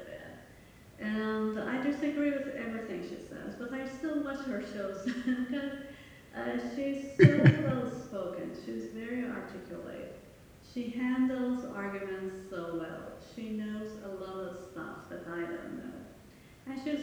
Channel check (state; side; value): identical; both; correlation 1.00